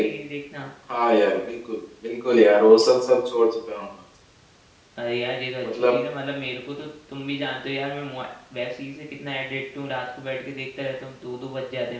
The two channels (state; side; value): identical; both; correlation 1.00